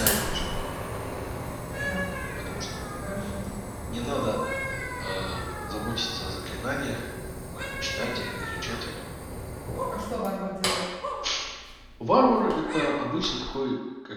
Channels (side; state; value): both; identical; correlation 1.00